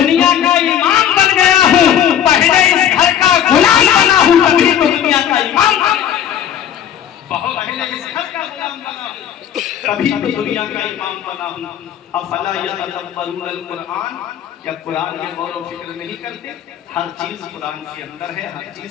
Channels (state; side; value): quieter; right; 9.8 dB